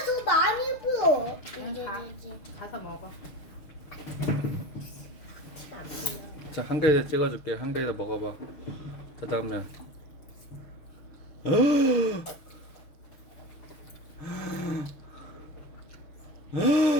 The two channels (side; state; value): right; late; 6.5 ms